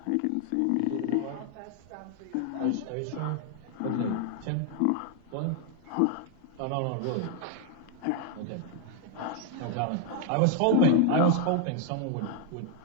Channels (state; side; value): different; both; correlation 0.00